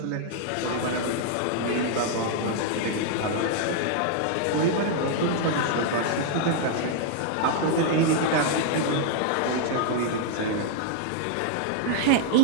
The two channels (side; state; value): both; different; correlation -0.01